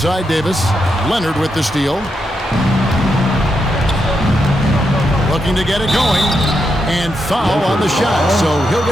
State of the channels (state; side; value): normal; both; correlation 0.83